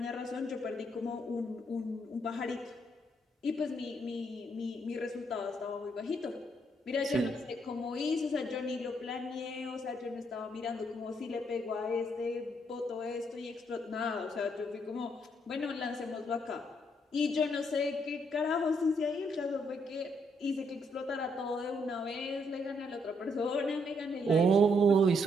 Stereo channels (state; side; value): normal; both; correlation 0.73